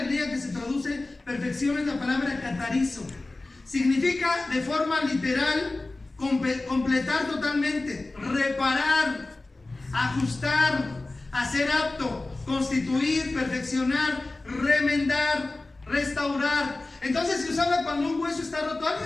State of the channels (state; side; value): quieter; right; 3.1 dB